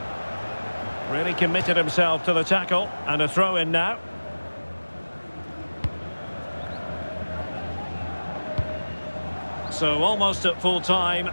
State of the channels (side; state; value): both; inverted; correlation -1.00